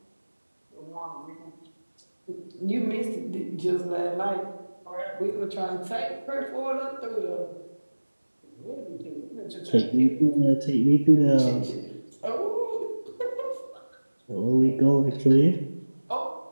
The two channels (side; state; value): both; inverted; correlation -1.00